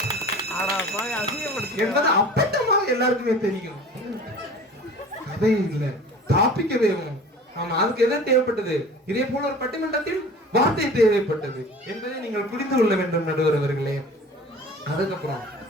என்பது அப்பட்டமாக எல்லாருக்குமே தெரியும். அதே இல்ல, டாபிக்கவே. ஆமா, அதுக்கு எதை தேவைப்பட்டது? இதே போல ஒரு பட்டிமன்றத்தில் வார்த்தை தேவைப்பட்டது என்பதை நீங்கள் புரிந்து கொள்ள வேண்டும் நடுவர் அவர்களே. அதுக்கப்புறம்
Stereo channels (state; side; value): normal; both; correlation 0.42